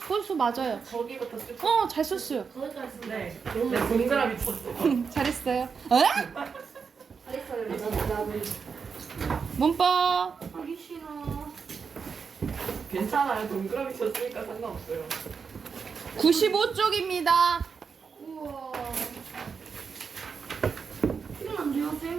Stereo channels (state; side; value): quieter; left; 5.8 dB